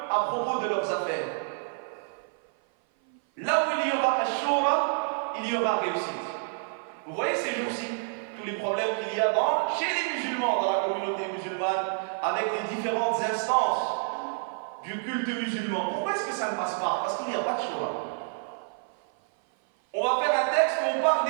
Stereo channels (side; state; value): left; silent; 55 dB below the other